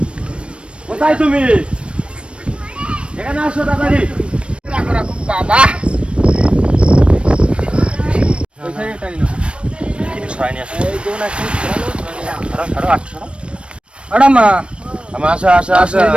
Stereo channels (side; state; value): left; late; 0.058 ms